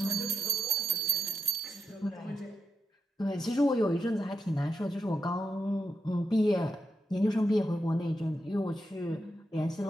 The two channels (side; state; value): both; normal; correlation 0.85